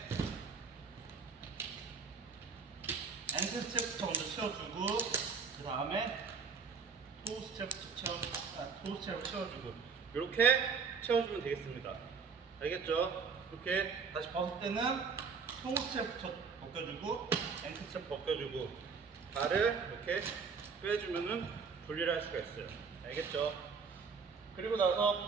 앵클 스텝부터 먼저 채워주고 그 다음에 토우 스텝을 채워주고 이렇게 채워주면 되겠습니다. 알겠죠? 이렇게 다시 벗을 때는 토우 스텝부터 벗겨주고 앵클 스텝 벗겨주고 발을 이렇게 빼주면은 분리를 할 수가 있어요. 알겠죠? 그리고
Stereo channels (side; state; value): left; quieter; 5.4 dB